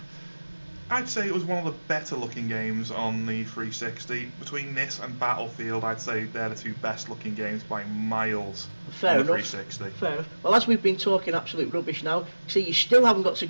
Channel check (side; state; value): both; inverted; correlation -1.00